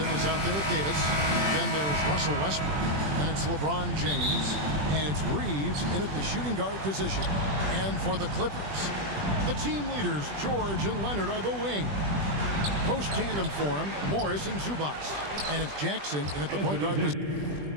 is out there with Davis. Then there's Russell Westbrook. Then it's LeBron James. And it's Reeves in at the shooting guard position. And for the Clippers, the team leaders, George and Leonard, are the wing. Post tandem for him, Morris and Zubac. And it's Jackson in at the point guard position.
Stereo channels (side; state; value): left; late; 20 ms